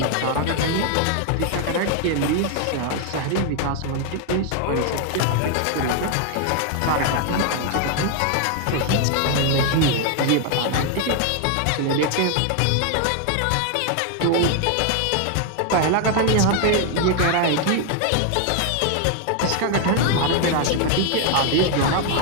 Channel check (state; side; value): different; both; correlation 0.01